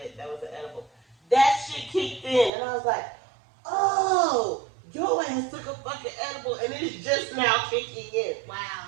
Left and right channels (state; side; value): drops out; left; at 2.5 s